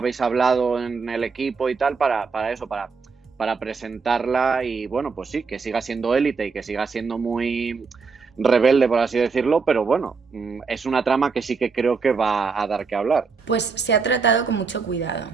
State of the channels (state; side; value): quieter; left; 5.0 dB